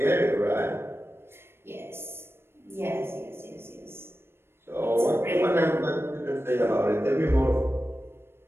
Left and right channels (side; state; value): left; late; 0.12 ms